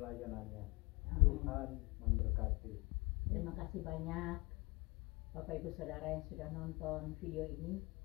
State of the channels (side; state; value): right; quieter; 26.1 dB